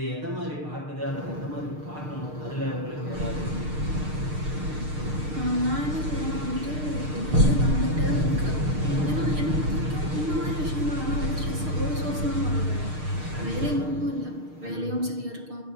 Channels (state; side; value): late; left; 6.6 ms